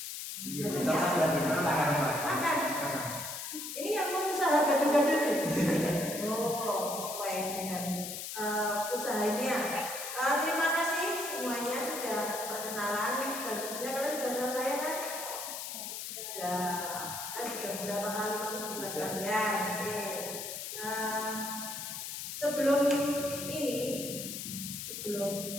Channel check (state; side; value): noise; left; hiss, 7 dB below the sound